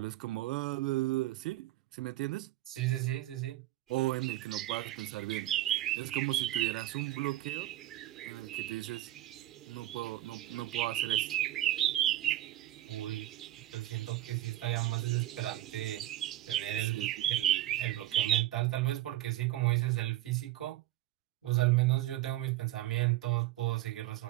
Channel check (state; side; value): quieter; left; 15.1 dB